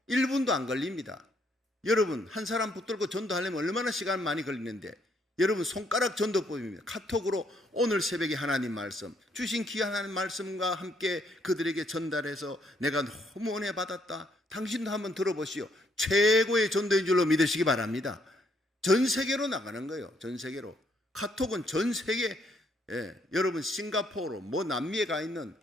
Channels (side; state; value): both; normal; correlation 0.71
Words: 1분도 안 걸립니다. 여러분, 한 사람 붙들고 전도하려면 얼마나 시간 많이 걸리는데, 여러분 손가락 전도법입니다. 카톡으로 오늘 새벽에 하나님 말씀, 주신 귀한 하나님 말씀과 함께 그들에게 전달해서 내가 너무 은혜 받았다. 당신도 한번 들어보시오. 최고의 전도인 줄로 믿으시기 바랍니다. 전 세계로 나가는 거예요. 전 세계로. 카톡은 전 세계, 여러분 싱가포르, 남미에 가 있는